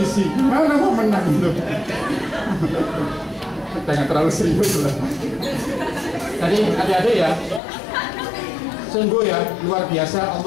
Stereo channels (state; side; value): drops out; right; at 7.6 s